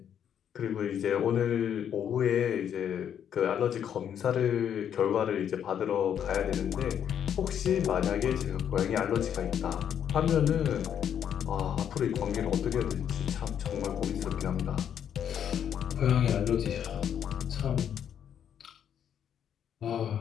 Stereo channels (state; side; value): quieter; right; 9.0 dB